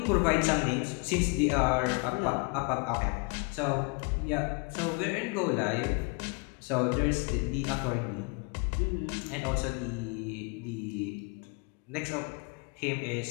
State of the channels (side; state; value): right; quieter; 32.2 dB